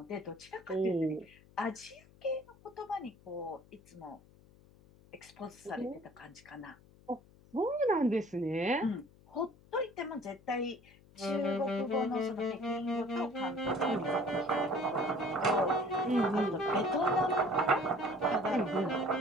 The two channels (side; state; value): left; noise; hum, 26 dB below the sound